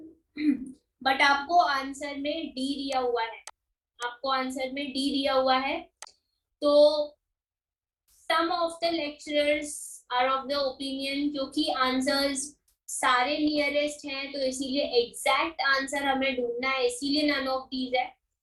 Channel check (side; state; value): both; identical; correlation 1.00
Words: But आपको आंसर में डी दिया हुआ है, आपको आंसर में डी दिया हुआ है। तो some of the lecturers are of the opinion, क्योंकि आंसर्स सारे नियरेस्ट हैं तो इसीलिए एग्जैक्ट आंसर हमें ढूंढना है, इसीलिए नन ऑफ दीज है।